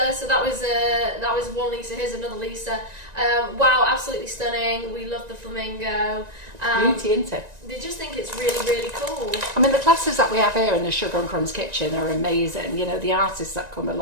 so that was one Lisa, here's another Lisa. Wow, absolutely stunning. We love the flamingo. Beauty, isn't it? They just think it's really, really cool. I mean, the classes that we have here in the Sugar and Crumbs kitchen are amazing. You know, the artists that come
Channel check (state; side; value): late; left; 1.9 ms